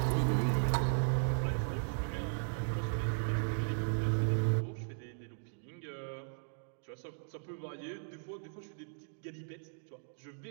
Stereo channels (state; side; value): silent; left; digital silence